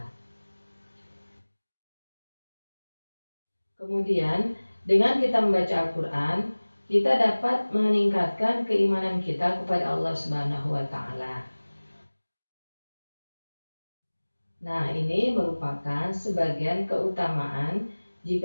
Kemudian, dengan kita membaca Al-Quran, kita dapat meningkatkan keimanan kita kepada Allah Subhanahu wa Ta'ala. Nah, ini merupakan sebagian keutamaan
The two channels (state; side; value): inverted; both; correlation -1.00